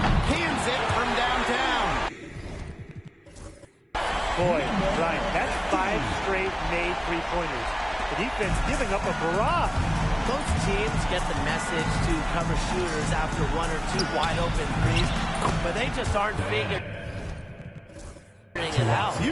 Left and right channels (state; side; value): identical; both; correlation 1.00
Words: Cans it from downtown. Boy, Brian, that's 5 straight made three-pointers. The defense giving up a barrage. Most teams get the message to cover shooters after 1 or 2 wide-open threes, but they just aren't figuring it out.